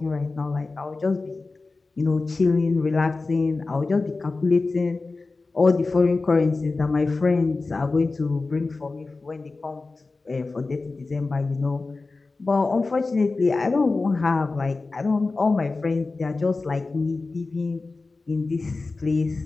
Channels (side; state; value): right; quieter; 3.7 dB